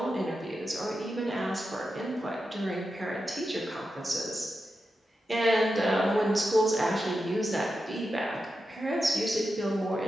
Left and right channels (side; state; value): both; normal; correlation 0.89